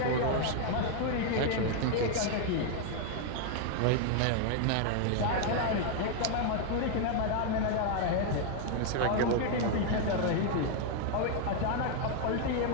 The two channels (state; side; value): different; both; correlation 0.00